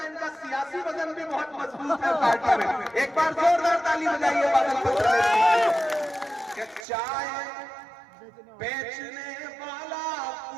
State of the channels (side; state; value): left; drops out; at 6.9 s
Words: इनका सियासी वजन भी बहुत मजबूत है पार्टी में। एक बार जोरदार ताली बजाइए बादल पत्र। चाय बेचने वाला